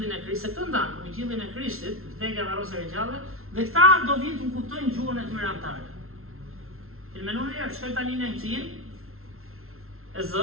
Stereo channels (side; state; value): left; late; 0.62 ms